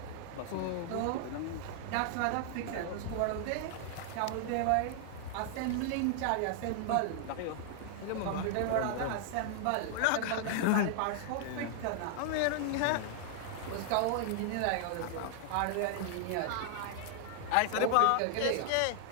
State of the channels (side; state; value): both; different; correlation -0.01